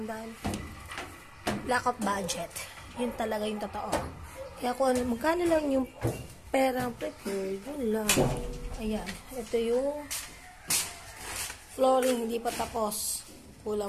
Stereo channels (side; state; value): both; identical; correlation 1.00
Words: dahil lack of budget. Yun talaga yung totoo. Kaya kung magkano lang yung perang prepared, yun lang. Ayan, ito yung flooring, hindi pa tapos.